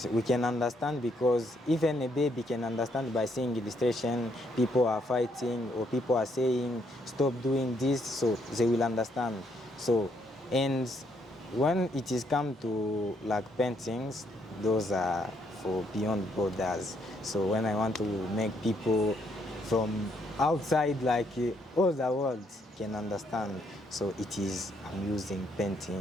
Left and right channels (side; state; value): both; normal; correlation 0.73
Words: we can understand, because even a baby can understand by seeing illustration, people are fighting or people are saying stop doing this, so they will understand. So, and when it is come to like paintings, those are for beyond borders. So when I want to make people from outside, like all the world can understand, so it is, I'm using